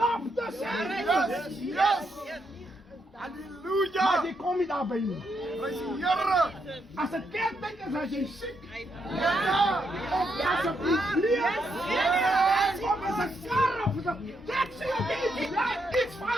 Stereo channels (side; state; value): both; normal; correlation 0.79